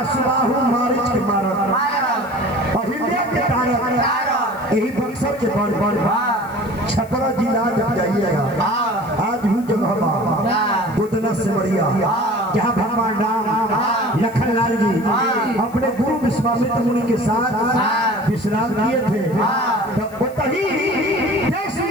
सुबाहु मारिच के मारत अहिल्या के तारक यही बक्सर के बड़ छपरा जिला जब जाइएगा आज भी जगह गोदना से बढ़िया जहाँ भगवान राम लखन लाल जी अपने गुरु विश्वामित्र मुनि के साथ विश्राम किए थे तब वही देश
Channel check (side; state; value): left; noise; hiss, 24 dB below the sound